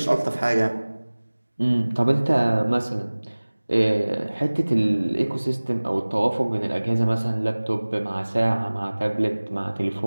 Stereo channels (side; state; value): both; inverted; correlation -1.00